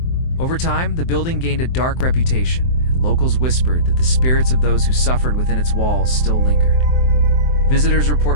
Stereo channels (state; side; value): late; right; 23 ms